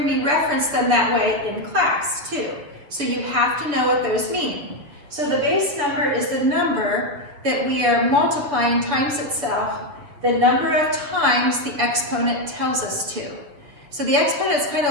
me reference them that way in class too. So you have to know what those mean. So the base number is the number that we are multiplying times itself, the number of times the exponent tells us to. So the exponent is kind of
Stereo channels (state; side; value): late; left; 7.3 ms